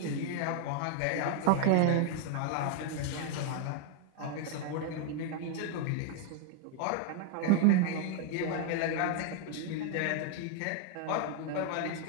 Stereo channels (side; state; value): both; different; correlation 0.00